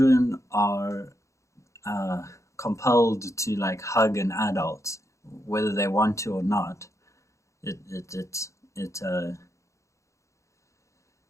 are compelled to like hug an adult, whether they want to or not, it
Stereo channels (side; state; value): right; late; 0.15 ms